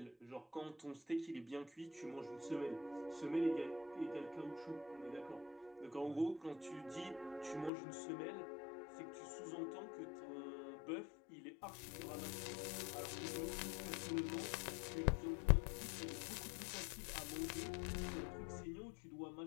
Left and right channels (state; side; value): drops out; right; at 7.7 s